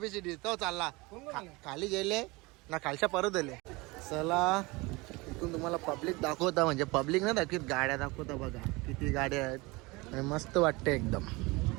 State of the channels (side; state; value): left; quieter; 24.1 dB